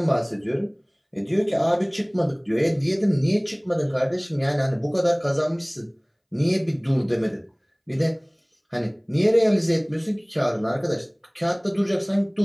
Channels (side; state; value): both; identical; correlation 1.00